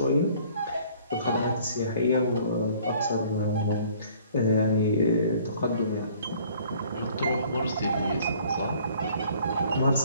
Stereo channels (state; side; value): inverted; both; correlation -0.55